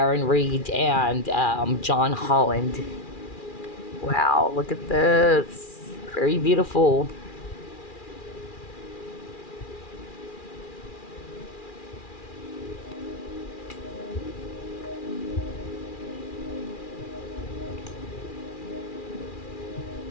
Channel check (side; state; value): right; late; 2.4 ms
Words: Reed and John Holland. Wow, look at this. Very beautiful.